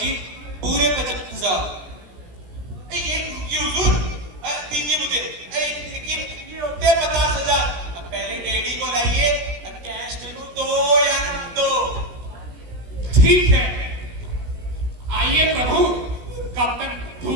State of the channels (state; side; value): late; left; 17 ms